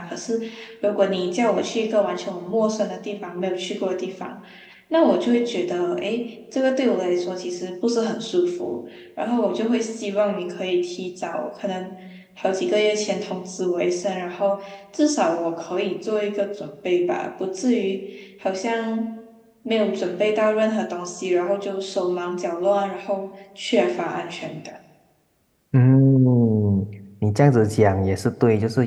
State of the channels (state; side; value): identical; both; correlation 1.00